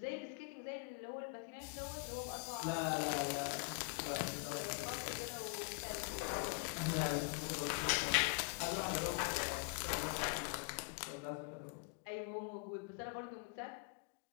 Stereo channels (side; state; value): right; quieter; 32.8 dB